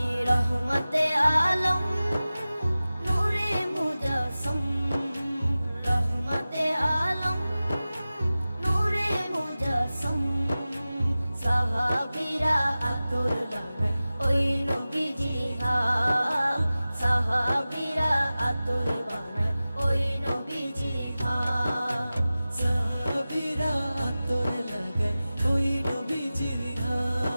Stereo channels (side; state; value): both; inverted; correlation -0.96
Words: রহমতে আলম নূরে মুজাসসম, রহমতে আলম নূরে মুজাসসম। সাহাবীরা আতর বানায় ওই নবীজির ঘাম, সাহাবীরা আতর বানায় ওই নবীজির ঘাম। সাহাবীরা আতর লাগায় ওই নবীজির